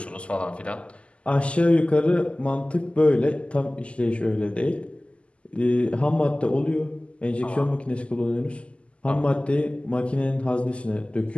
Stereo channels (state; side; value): late; right; 0.057 ms